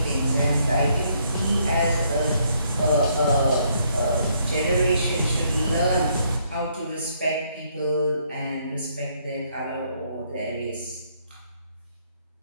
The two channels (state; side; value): inverted; both; correlation -0.70